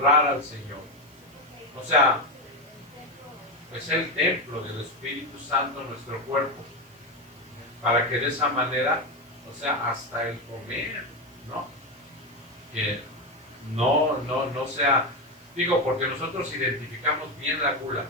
al Señor. O sea, es el templo del Espíritu Santo en nuestro cuerpo, para que de esa manera, o sea, hasta el comer, ¿no? Que no sea, digo, porque nosotros identificamos bien la gula,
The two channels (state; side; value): noise; right; hiss, 29 dB below the sound